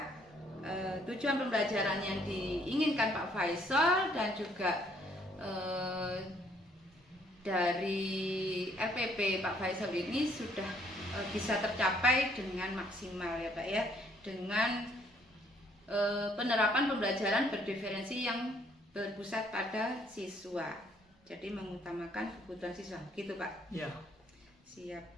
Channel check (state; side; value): normal; both; correlation 0.65